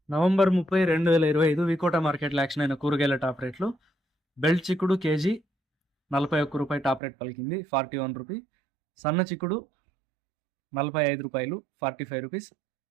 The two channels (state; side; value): drops out; left; at 7.0 s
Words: నవంబర్ 30, 2025 వికోట మార్కెట్లో యాక్షన్ అయిన కూరగాయల టాప్ రేట్లు. బెల్ట్ చిక్కుడు కేజీ 41 రూపాయి టాప్ రేట్ పలికింది, 41 రూపీ. సన్న చిక్కుడు 45 రూపాయలు, 45 రూపీస్.